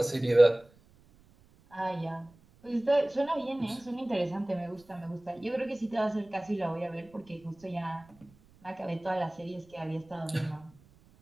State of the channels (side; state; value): right; noise; rumble, 28 dB below the sound